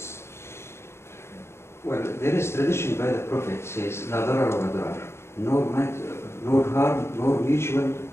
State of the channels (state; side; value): late; right; 0.12 ms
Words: Well, there is tradition by the Prophet says, "La darar wa darar," nor harm, nor mutual